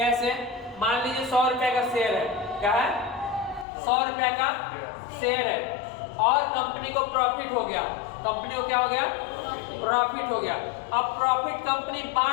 मान लीजिए 100 रुपए का शेयर है, क्या है? 100 रुपए का शेयर है, और कंपनी को प्रॉफिट हो गया, कंपनी को क्या हो गया? प्रॉफिट हो गया। अब प्रॉफिट कंपनी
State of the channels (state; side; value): drops out; right; at 3.7 s